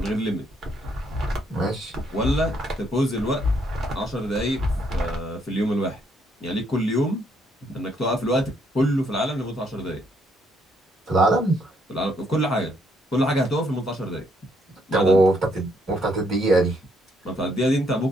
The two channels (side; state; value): both; normal; correlation 0.72